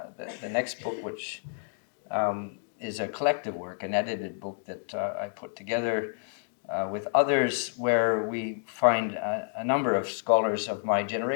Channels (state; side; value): silent; right; digital silence